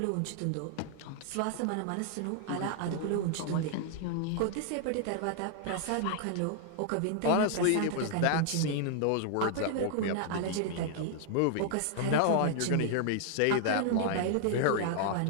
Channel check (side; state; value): both; different; correlation 0.00